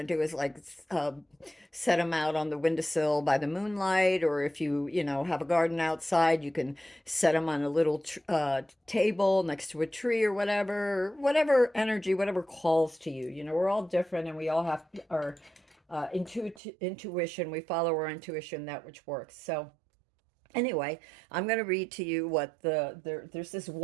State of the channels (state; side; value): drops out; left; at 16.6 s